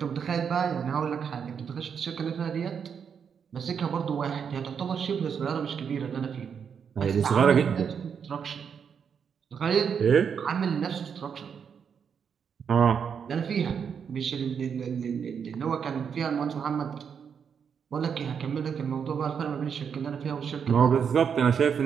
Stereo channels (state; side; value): quieter; left; 7.0 dB